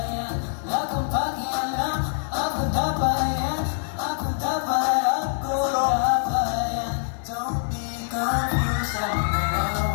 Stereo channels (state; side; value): silent; right; 62 dB below the other